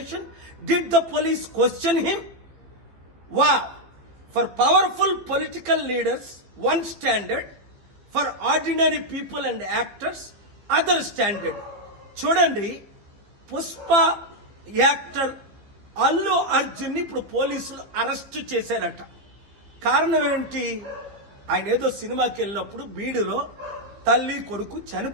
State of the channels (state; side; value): late; left; 15 ms